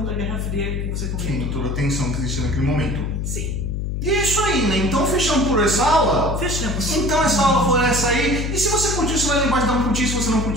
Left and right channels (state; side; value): noise; left; hum, 2 dB below the sound